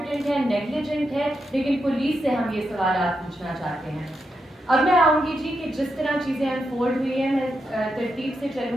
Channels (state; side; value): normal; both; correlation 0.85